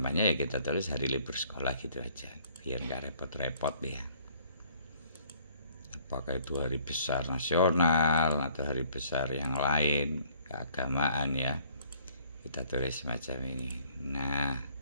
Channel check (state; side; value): inverted; both; correlation -0.60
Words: ya kita tulis hari libur sekolah gitu aja, biar nggak repot-repot ya. Apakah itu hari besar nasional atau hari besar yang lain keagamaan ya, kita tulis semacam ini. Nah,